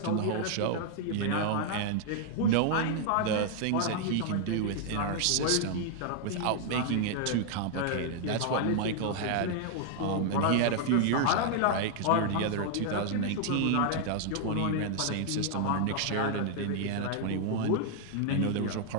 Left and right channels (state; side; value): different; both; correlation 0.00